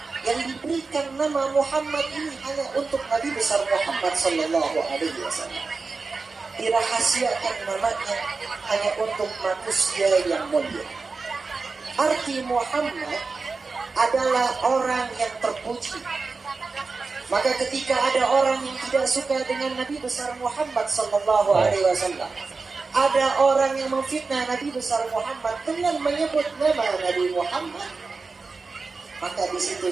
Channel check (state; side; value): quieter; left; 4.2 dB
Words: yang diberikan nama Muhammad ini hanya untuk Nabi besar Muhammad sallallahu alaihi wasallam. Dirahasiakan namanya hanya untuk manusia yang mulia. Arti Muhammad adalah orang yang terpuji. Maka ketika ada orang yang tidak suka dengan Nabi besar Muhammad sallallahu alaihi wasallam, ada orang yang memfitnah Nabi besar Muhammad dengan menyebut nama Nabi Muhammad, maka di situ